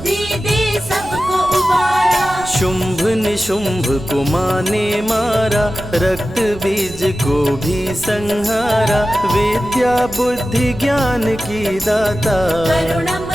दे सबको उबारा। शुंभ निशुंभ को माँ ने मारा, रक्त बीज को भी संहारा। विद्या बुद्धि ज्ञान की दाता,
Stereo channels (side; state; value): right; noise; rumble, 15 dB below the sound